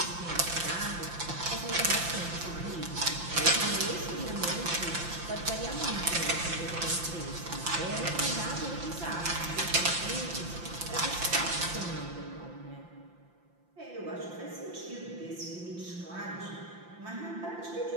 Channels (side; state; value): left; late; 5.8 ms